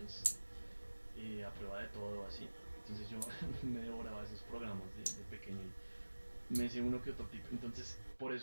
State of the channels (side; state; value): both; inverted; correlation -1.00